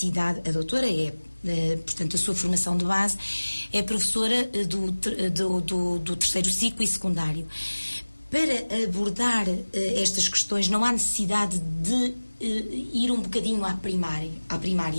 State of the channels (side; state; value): both; inverted; correlation -1.00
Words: a doutora portanto, a sua formação de base é professora do terceiro ciclo e secundário. Para abordar estas questões, não há necessidade de ir um bocadinho à primária,